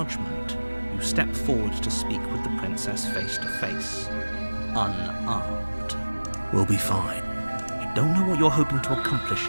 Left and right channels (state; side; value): inverted; both; correlation -1.00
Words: you step forward to speak with the princess face to face. Unarmed. We'll be fine. I don't know what you're hoping to accomplish